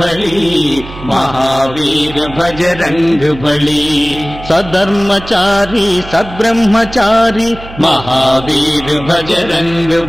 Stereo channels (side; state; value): right; noise; hum, 15 dB below the sound